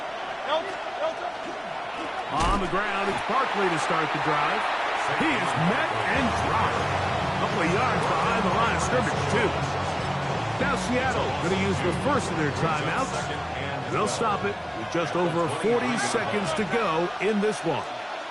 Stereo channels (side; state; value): both; identical; correlation 1.00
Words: On the ground, it's Barkley to start the drive. He is met and dropped. A couple of yards behind the line of scrimmage, too. Now Seattle going to use the first of their timeouts. They'll stop it with just over 40 seconds to go in this one.